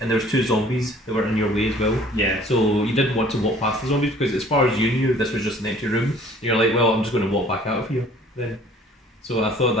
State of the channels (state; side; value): normal; both; correlation 0.53